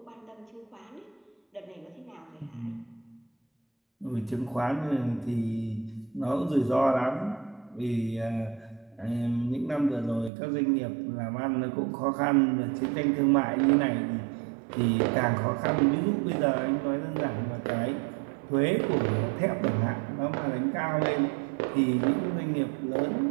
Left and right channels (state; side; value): drops out; left; at 10.3 s